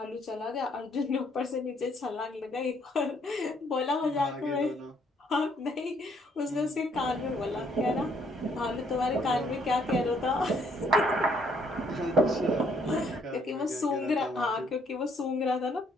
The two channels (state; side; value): normal; both; correlation 0.67